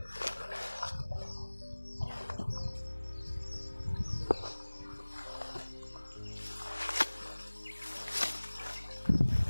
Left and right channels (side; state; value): both; inverted; correlation -1.00